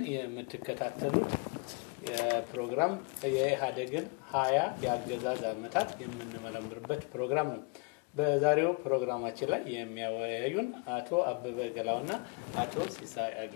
የምትከታተሉት የፕሮግራም የኢሃደግን 20 የአገዛዝ ዓመታት የምንመረምርበት ፕሮግራም ነው። በዛሬው ፕሮግራማችን ላይ የሚያወያዩን አቶ አበበ ገላውና አቶ ሲሳይ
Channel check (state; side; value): quieter; right; 31.1 dB